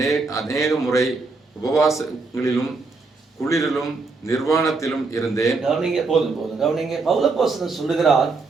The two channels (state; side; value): quieter; left; 3.9 dB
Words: அநேக முறை உபவாசங்களிலும் குளிரிலும் நிர்வாணத்திலும் இருந்தேன். கவனிங்க. பவுல் அப்போஸ்தலன் சொல்லுகிறார்,